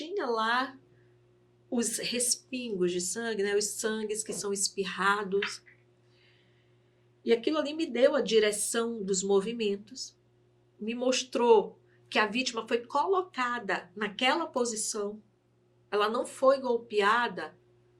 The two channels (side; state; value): both; identical; correlation 1.00